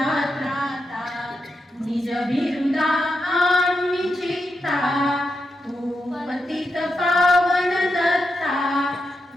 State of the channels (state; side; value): normal; both; correlation 0.86